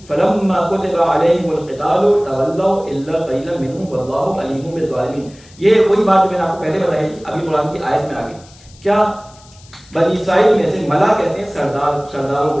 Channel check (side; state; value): left; noise; hiss, 25 dB below the sound